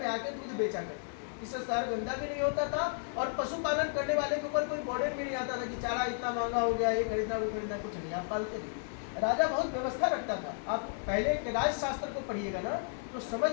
आके दूध बेचा करते, इससे शहर गंदा भी नहीं होता था और पशुपालन करने वाले के ऊपर कोई बर्डन भी नहीं आता था कि चारा इतना महंगा हो गया, ये खरीदना वो खरीदना, कुछ नहीं, आप पालते नहीं। राजा बहुत व्यवस्था रखता था। आप पहले के राजशास्त्र को पढ़िएगा ना तो समझ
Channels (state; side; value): silent; right; 56 dB below the other